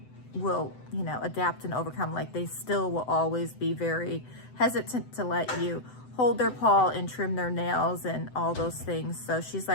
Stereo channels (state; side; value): late; right; 7.9 ms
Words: will, you know, adapt and overcome. Like, they still will always be very hesitant to let you hold their paw and trim their nails and all those things. So she's